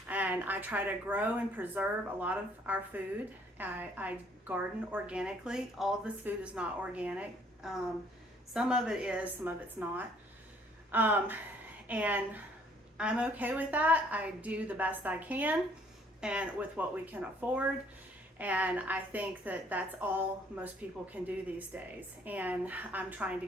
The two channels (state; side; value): normal; both; correlation 0.62